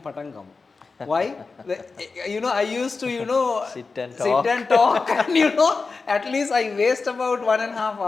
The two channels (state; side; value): quieter; right; 4.3 dB